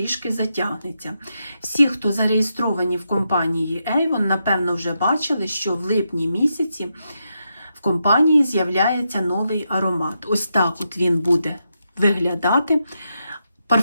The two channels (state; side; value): inverted; both; correlation -0.84